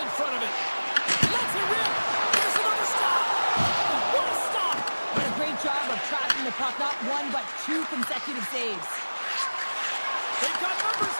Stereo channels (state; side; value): inverted; both; correlation -1.00